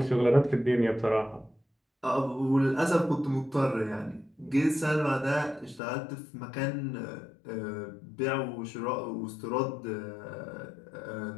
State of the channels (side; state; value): right; drops out; at 5.8 s